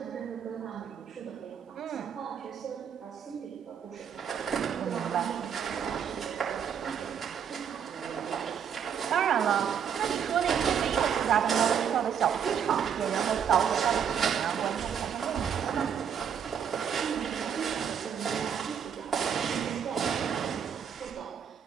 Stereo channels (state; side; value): quieter; left; 7.9 dB